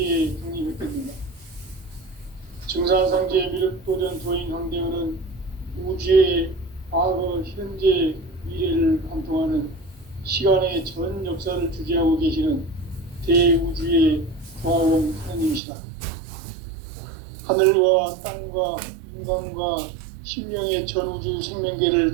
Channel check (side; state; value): left; drops out; at 15.6 s